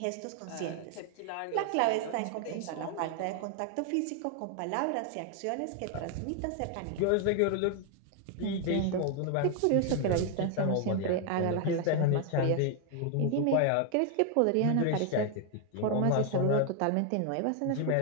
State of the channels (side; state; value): both; different; correlation 0.01